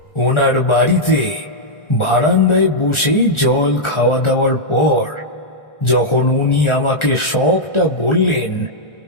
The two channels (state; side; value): late; right; 1.4 ms